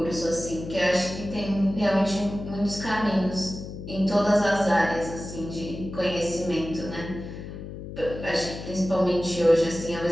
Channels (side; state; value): left; noise; hum, 10 dB below the sound